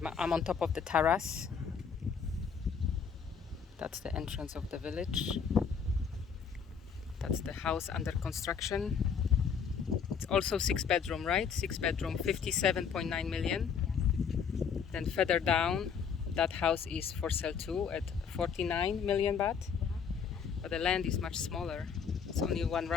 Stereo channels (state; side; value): quieter; right; 6.7 dB